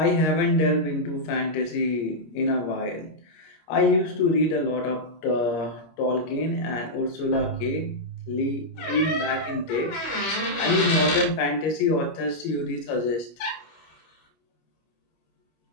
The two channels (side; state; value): right; late; 25 ms